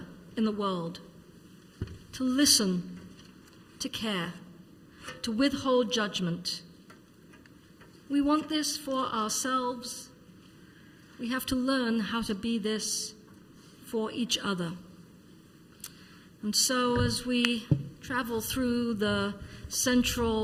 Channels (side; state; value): both; identical; correlation 1.00